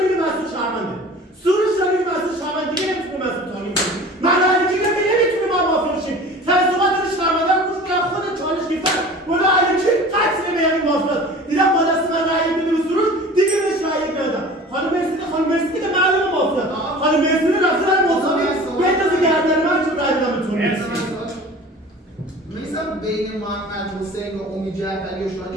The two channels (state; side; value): normal; both; correlation 0.41